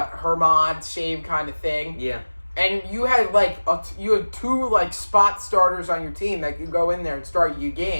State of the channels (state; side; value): inverted; both; correlation -1.00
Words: Herman, same kind of thing. Yeah. And you had two spot starters on your team that could go in there and start your